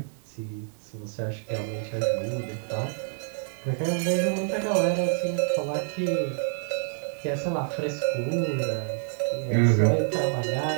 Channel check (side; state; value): left; silent; digital silence